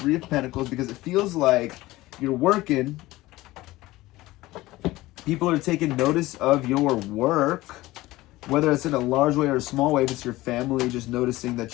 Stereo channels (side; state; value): right; quieter; 18.3 dB